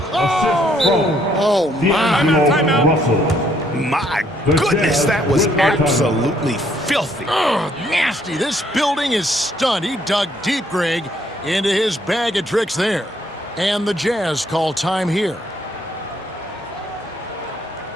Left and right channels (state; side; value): normal; both; correlation 0.68